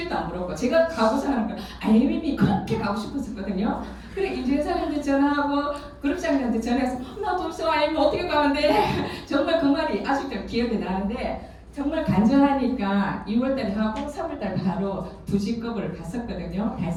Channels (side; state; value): both; identical; correlation 1.00